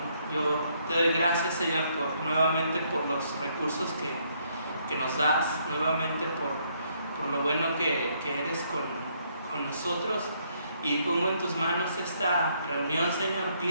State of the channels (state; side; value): inverted; both; correlation -0.71